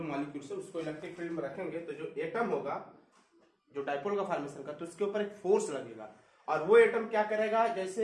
मॉलिक्यूल्स है उसको इलेक्ट्रिक फील्ड में रखेंगे, तो जो एटम होगा जो डाइपोल का फॉर्मेशन करता है उसके ऊपर एक फोर्स लगेगा और वो एटम क्या करेगा,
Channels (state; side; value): identical; both; correlation 1.00